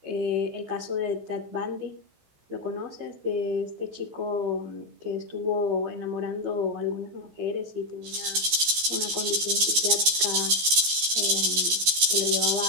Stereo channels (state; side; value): late; left; 14 ms